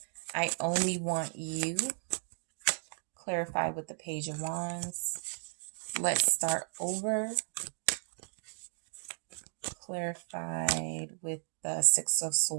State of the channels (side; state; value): left; silent; digital silence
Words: I only want you. Clarify with the Page of Wands. Let's start over. Clarified with the Six of